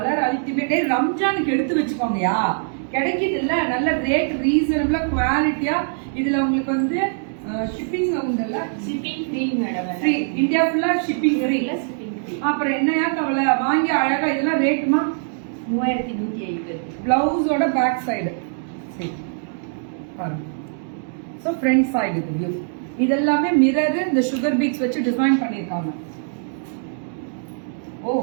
ultimate. ரம்ஜானுக்கு எடுத்து வச்சுக்கோங்கயா. கிடைக்குது இல்ல, நல்ல ரேட் ரீசனபிளா குவாலிட்டியா. இதுல உங்களுக்கு வந்து ஷிப்பிங் உண்டுல்ல? Shipping free madam. Free. India ஃபுல்லா ஷிப்பிங் ஃப்ரீ. அப்புறம் என்னையா கவலை? வாங்கி அழகா. இதெல்லாம் ரேட்டுமா? 3150. பிளவுஸோட பேக் சைடு. சரி பாருங்க. ஸோ ஃப்ரண்ட் சைடு இது வியூ. இதெல்லாமே மிரர், இந்த சுகர் பீட்ஸ் வச்சு டிசைன் பண்ணிருக்காங்க. Oh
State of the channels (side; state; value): left; silent; digital silence